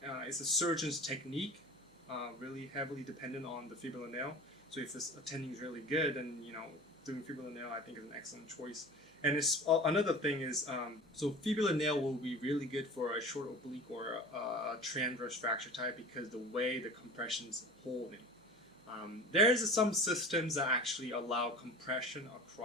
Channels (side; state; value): right; noise; hum, 29 dB below the sound